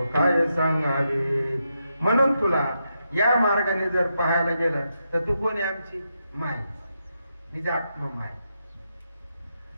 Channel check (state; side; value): inverted; both; correlation -0.84